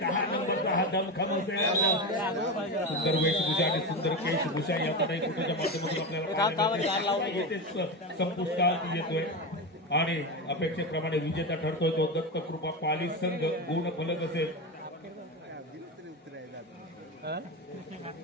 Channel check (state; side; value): normal; both; correlation 0.18